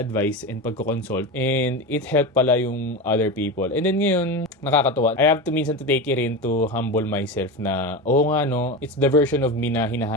and pagko-consult. And it helped pala yung other people. And then ngayon, nakakatuwa. I have to minsan to take it in to humble myself na, it's the version of me na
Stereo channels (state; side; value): normal; both; correlation 0.22